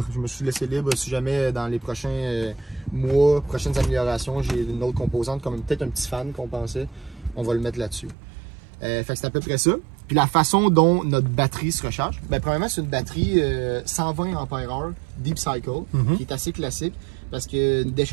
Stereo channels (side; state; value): left; drops out; at 8.2 s